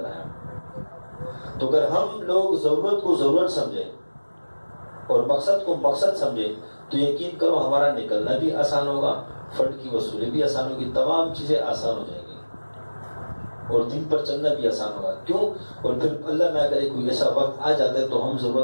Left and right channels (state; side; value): inverted; both; correlation -1.00